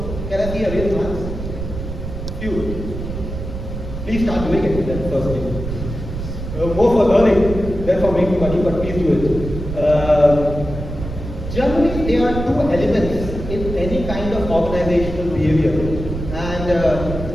Can I see a real hands? Few. Please start doing it then firstly. More for learning than for making money, but please do it. Generally, there are two elements in any kind of organizational behavior. And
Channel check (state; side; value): noise; right; rumble, 7 dB below the sound